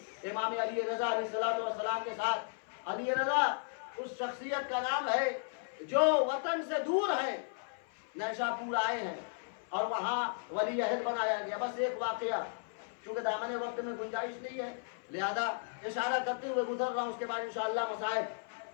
امام علی رضا علیہ السلام کے ساتھ علی رضا اس شخصیت کا نام ہے جو وطن سے دور ہے، نیشا پور آئے ہیں اور وہاں ولی عہد بنایا گیا۔ بس ایک واقعہ، چونکہ دامن وقت میں گنجائش نہیں ہے لہذا اشارہ کرتے ہوئے گزر رہا ہوں، اس کے بعد انشاءاللہ مسائل۔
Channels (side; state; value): right; silent; 54 dB below the other